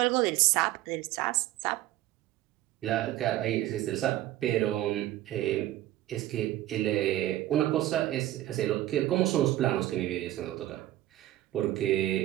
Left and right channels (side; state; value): left; quieter; 14.7 dB